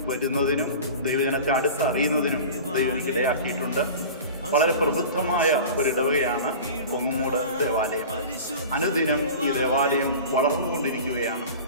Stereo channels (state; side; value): inverted; both; correlation -0.36